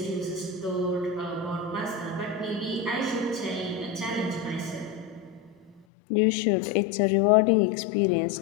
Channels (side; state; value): right; drops out; at 5.9 s